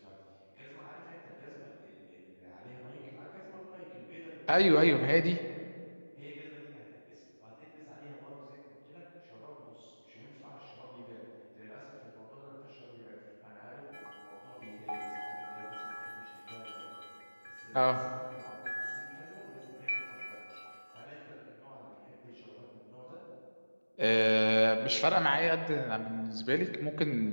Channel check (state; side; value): inverted; both; correlation -1.00